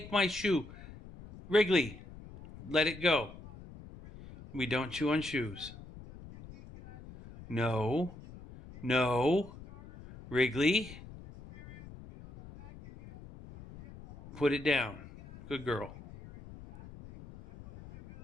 my shoe. Wrigley, let it go. We don't chew on shoes. No. Wrigley, put it down. Good girl.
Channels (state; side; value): noise; left; rumble, 16 dB below the sound